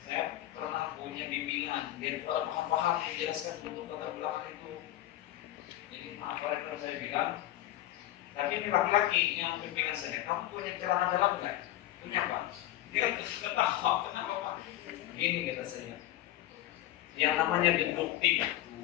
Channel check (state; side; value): quieter; right; 14.2 dB